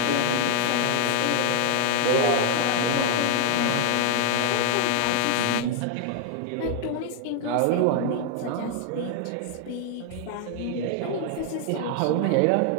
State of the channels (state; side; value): different; both; correlation 0.00